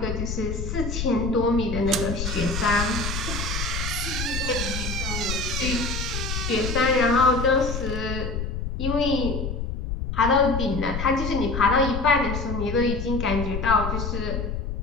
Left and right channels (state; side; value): noise; left; rumble, 4 dB below the sound